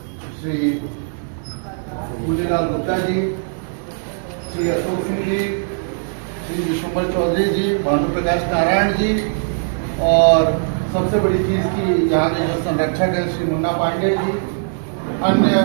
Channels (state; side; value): silent; left; digital silence